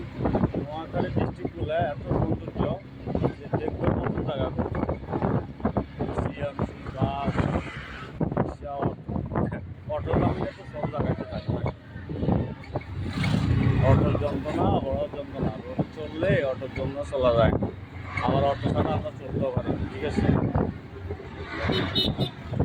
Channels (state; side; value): identical; both; correlation 1.00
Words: নোয়াখালী ডিস্ট্রিক্টগুলো এত সৌন্দর্য যে দেখবে কত জায়গা সিএমসি বাস অটো নামলে তো সব জায়গাতে থাকে। অটোর যন্ত্রণা বড় যন্ত্রণা, রোডে চললে অটোর জন্য চলা যায়, আবার অটো ছাড়া আমরা চলতেও পারি। ঠিক আছে,